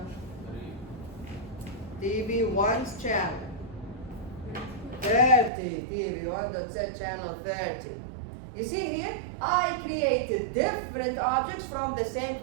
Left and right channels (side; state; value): left; drops out; at 5.5 s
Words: TV 1's channel. 30. TV 1 dot set channel 30. You see here, I created different objects from the same